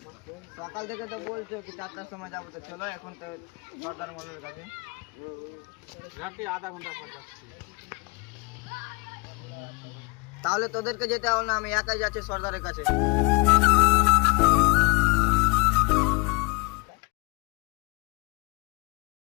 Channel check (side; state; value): right; quieter; 27.9 dB